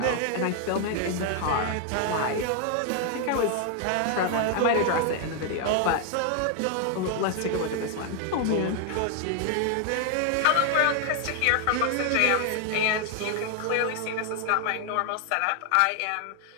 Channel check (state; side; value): different; both; correlation 0.00